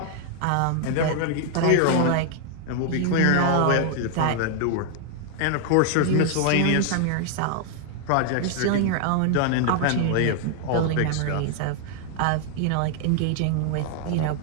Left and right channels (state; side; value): different; both; correlation 0.00